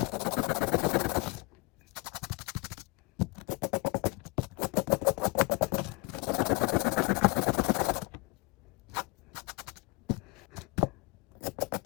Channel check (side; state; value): right; quieter; 25.1 dB